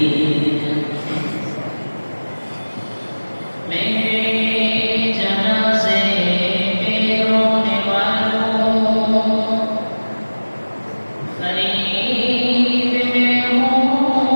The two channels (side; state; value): both; inverted; correlation -1.00